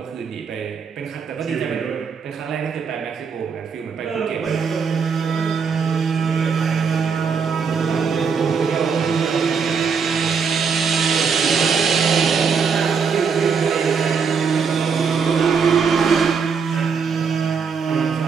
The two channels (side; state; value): left; quieter; 5.9 dB